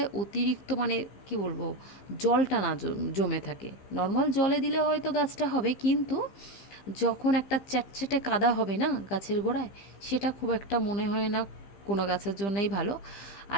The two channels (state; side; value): late; right; 15 ms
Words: অতিরিক্ত মানে কি বলবো, জলটা না জমে থাকে। নর্মাল জলে দিলে হয়তো গাছটা হবে, কিন্তু যখন একটা চ্যাটচ্যাটে কাদা হবে না গাছের গোড়ায়, সেটা খুব একটা মনে হয় না কোনো গাছের জন্যই ভালো।